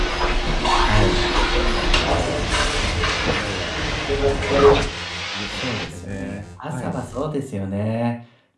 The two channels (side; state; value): both; identical; correlation 1.00